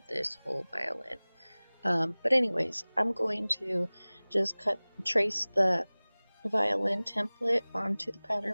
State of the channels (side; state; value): both; inverted; correlation -1.00